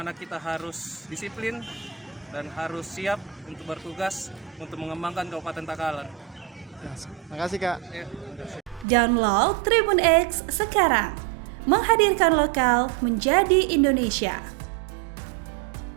kita harus disiplin dan harus siap untuk bertugas untuk mengembangkan Kabupaten Takalar. Ya, makasih Kak. Ya, Download Tribun X sekarang, menghadirkan lokal menjadi Indonesia.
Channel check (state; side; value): drops out; left; at 8.8 s